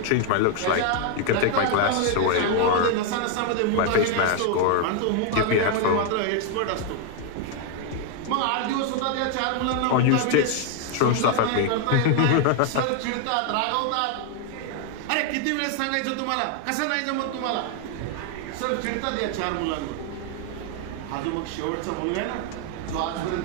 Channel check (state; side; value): different; both; correlation 0.00